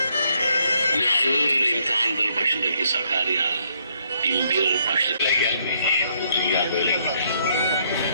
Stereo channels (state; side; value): inverted; both; correlation -0.70